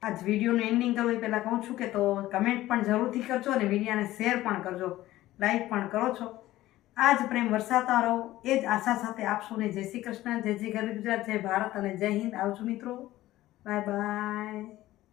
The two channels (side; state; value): right; quieter; 15.8 dB